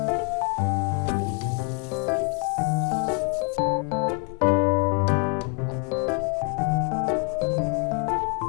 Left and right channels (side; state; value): right; quieter; 36.8 dB